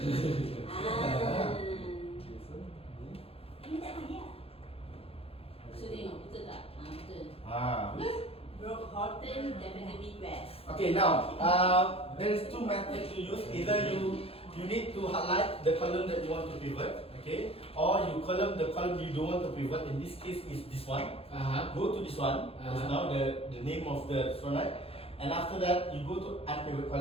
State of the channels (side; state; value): right; late; 0.28 ms